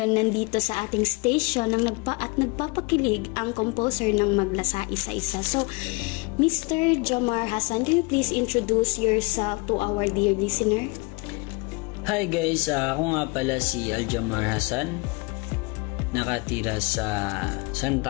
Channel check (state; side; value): quieter; right; 28.3 dB